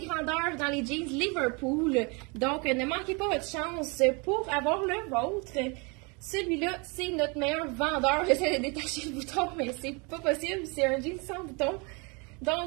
grandeurs dans les jeans Liverpool. Donc, ne manquez pas votre chance pour avoir le vôtre. Celui-là, c'est notre meilleur vendeur. J'essaie de détacher le bouton, mais c'est pas possible. C'est un jean sans bouton.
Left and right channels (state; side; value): quieter; left; 30.6 dB